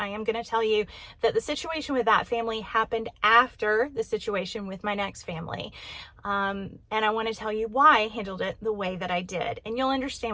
am going to tell you that the situation with that family happened after the situation with my next family. And I want to tell you why I handled it the way that I did. And you'll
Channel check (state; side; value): identical; both; correlation 1.00